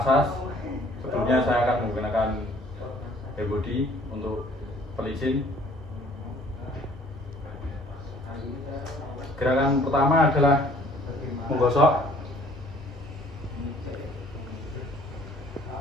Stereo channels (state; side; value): normal; both; correlation 0.57